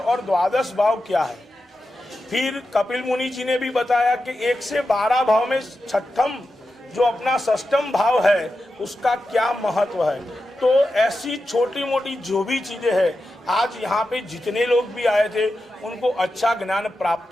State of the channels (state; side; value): normal; both; correlation 0.90